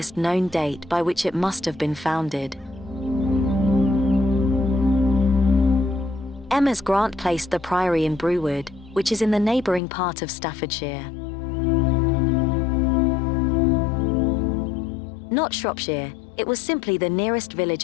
known date by which it must have been founded. Emma's grant placed the priory in Brewood, which is in the neighbouring part of Staffordshire. Not Shropshire, it was simply the nearest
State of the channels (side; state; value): right; drops out; at 9.8 s